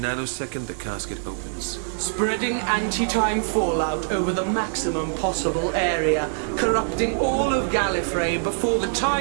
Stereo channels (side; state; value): left; silent; digital silence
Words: the casket opens. Spreading anti-time fallout over the maximum possible area, corrupting all of Gallifrey before the